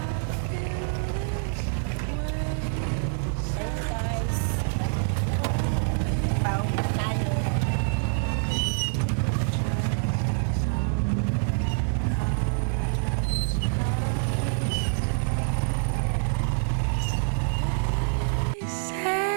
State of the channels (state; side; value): silent; left; 61 dB below the other